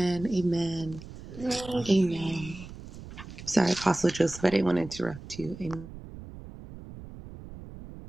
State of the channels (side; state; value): right; noise; rumble, 14 dB below the sound